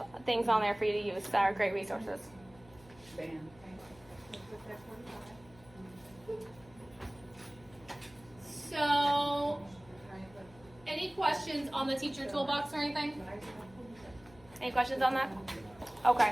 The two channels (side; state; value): left; noise; hum, 24 dB below the sound